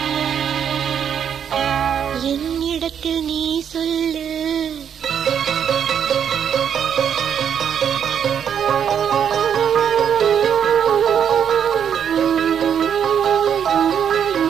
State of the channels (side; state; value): left; quieter; 8.3 dB